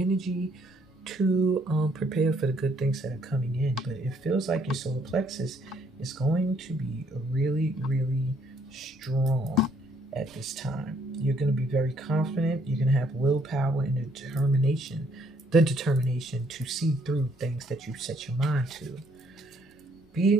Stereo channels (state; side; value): normal; both; correlation 0.67